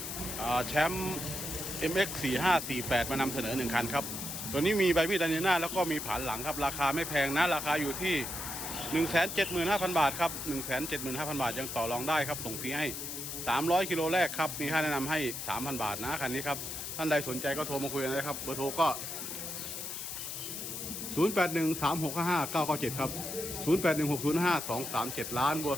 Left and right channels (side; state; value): left; noise; hiss, 6 dB below the sound